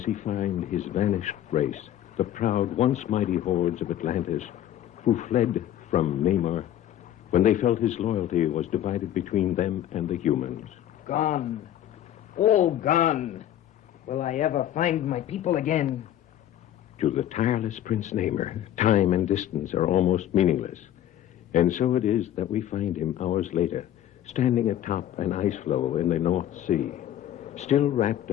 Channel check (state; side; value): quieter; right; 11.7 dB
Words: he find his vanished race, the proud, once mighty hordes of Atlantis, who fled from Namor when they felt his loyalty was divided between them and the humans. Gone. All gone. Will I ever find my people again? To the tireless Prince Namor, time and distance are almost meaningless. And so it is that we find him hours later, standing atop an ice floe in the North Sea, still wrapped